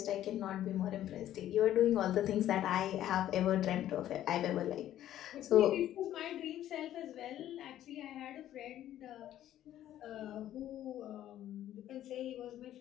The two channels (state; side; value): quieter; right; 12.3 dB